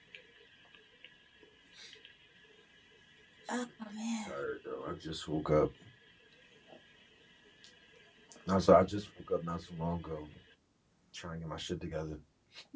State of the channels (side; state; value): both; identical; correlation 1.00